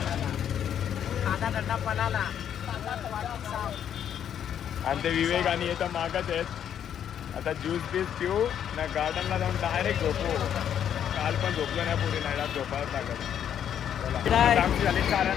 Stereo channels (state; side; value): quieter; right; 9.3 dB